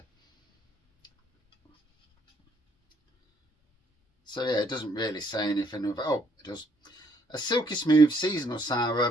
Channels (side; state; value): both; normal; correlation 0.68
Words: So yeah, it doesn't really say anything of, oh, it does. A silky smooth seasonal